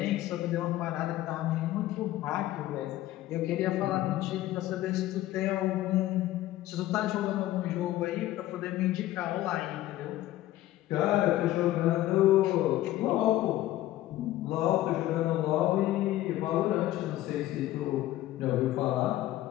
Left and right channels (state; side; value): quieter; right; 15.0 dB